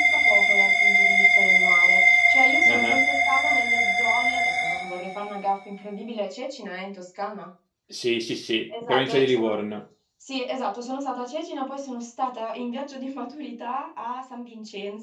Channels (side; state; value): both; identical; correlation 1.00